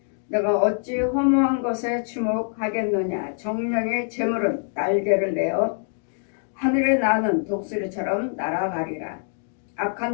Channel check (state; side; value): silent; right; 62 dB below the other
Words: 내가 어찌 허무한 것에 주목하겠느냐. 정령의 재물은 날개를 내어 하늘에 나는 독수리처럼 날아가리라. 악한